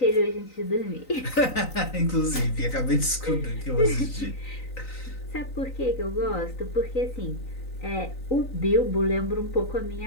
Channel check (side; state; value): right; late; 3.9 ms